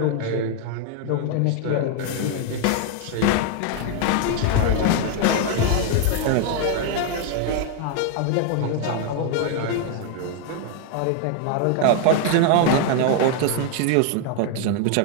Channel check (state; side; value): different; both; correlation 0.00